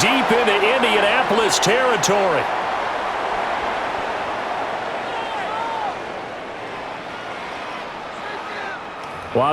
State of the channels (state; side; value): identical; both; correlation 1.00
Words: into Indianapolis territory. Well,